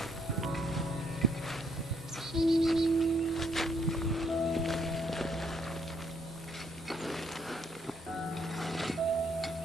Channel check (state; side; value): normal; both; correlation 0.70